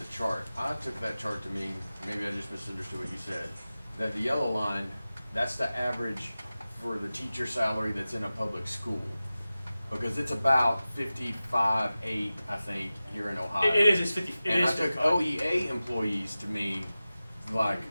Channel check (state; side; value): inverted; both; correlation -0.96